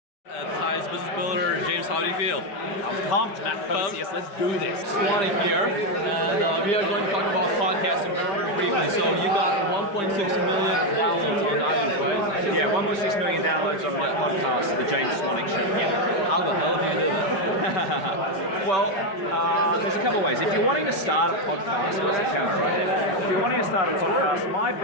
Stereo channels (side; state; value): right; late; 5.3 ms